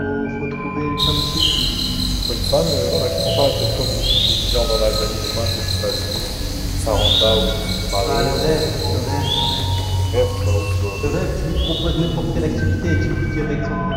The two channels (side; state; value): both; identical; correlation 1.00